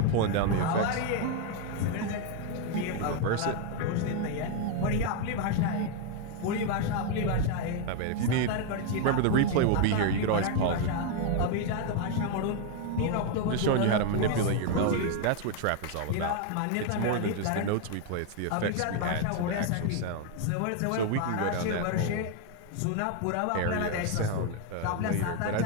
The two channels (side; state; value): both; different; correlation 0.01